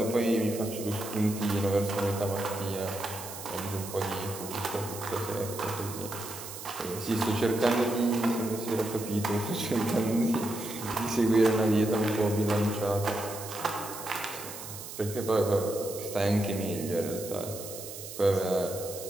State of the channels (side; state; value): right; noise; hiss, 11 dB below the sound